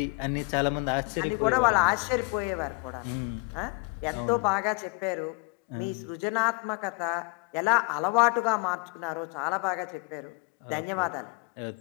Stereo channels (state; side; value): quieter; right; 30.4 dB